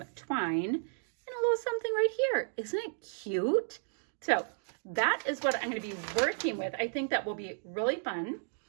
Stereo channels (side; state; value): left; silent; digital silence